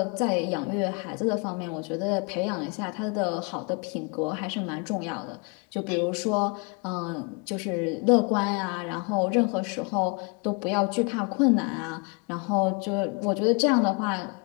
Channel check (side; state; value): right; quieter; 32.6 dB